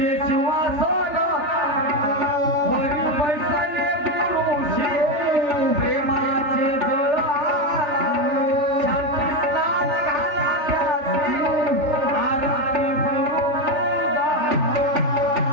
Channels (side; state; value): left; late; 3.4 ms